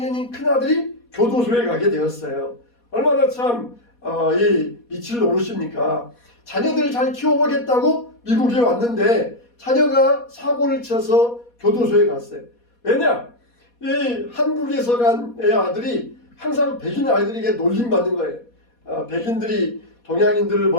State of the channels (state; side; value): late; right; 4.2 ms